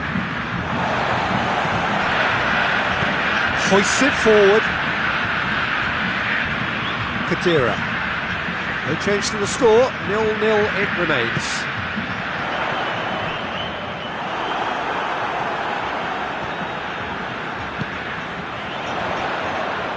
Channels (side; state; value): both; identical; correlation 1.00